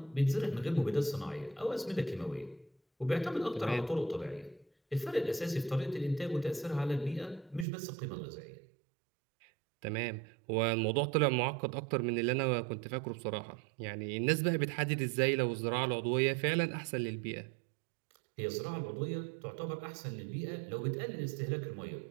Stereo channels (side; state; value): left; drops out; at 7.7 s